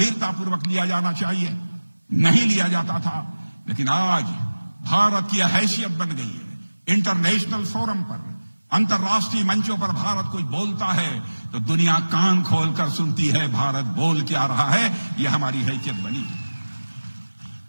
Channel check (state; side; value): inverted; both; correlation -1.00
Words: पूर्वक लिया जाना चाहिए नहीं लिया जाता था। लेकिन आज भारत की हैसियत बन गई है। इंटरनेशनल फोरम पर, अंतर्राष्ट्रीय मंचों पर भारत कुछ बोलता है तो दुनिया कान खोलकर सुनती है, भारत बोल क्या रहा है, यह हमारी हैसियत बनी है।